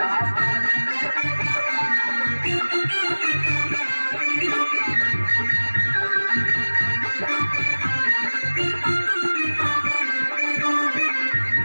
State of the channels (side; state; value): both; inverted; correlation -1.00